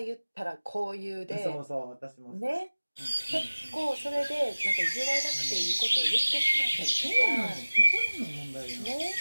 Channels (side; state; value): both; inverted; correlation -1.00